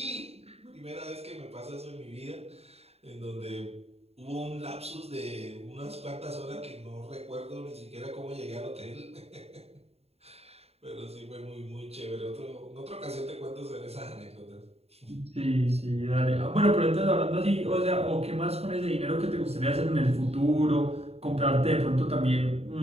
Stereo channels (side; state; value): left; late; 0.30 ms